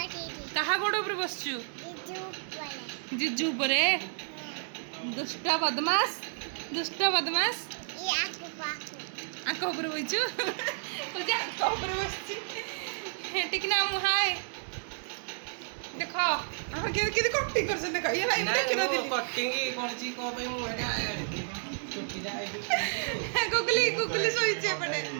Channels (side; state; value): left; silent; 57 dB below the other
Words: कहा गोड़ ऊपर बसचु जिजू परे दुष्ट बदमाश आंख ऊपर बइचु तुझे आंख ऊपर बसची ठीक ना मुहाय देखो हम के कटिंग करछन देखो ये भाई देख ना दिली कटिंग करची को पे मु छुट्टी जाए गुगली सोइचे पड़े